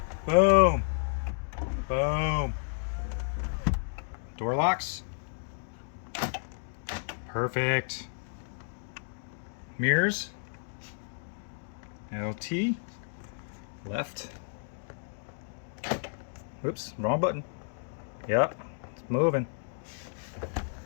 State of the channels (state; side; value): silent; right; digital silence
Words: Boom. Boom. Door locks. Perfect. Mirrors, LT, left, oops, wrong button, yep, it's moving,